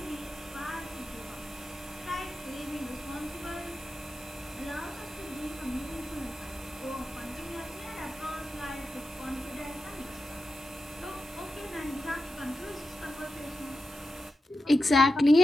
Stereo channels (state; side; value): normal; both; correlation 0.90